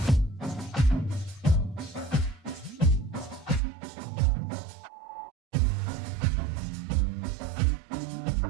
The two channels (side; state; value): left; drops out; at 3.6 s